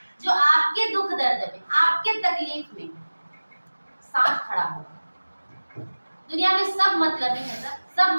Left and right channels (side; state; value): both; inverted; correlation -1.00